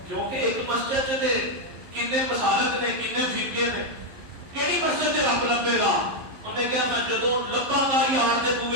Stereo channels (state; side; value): late; left; 11 ms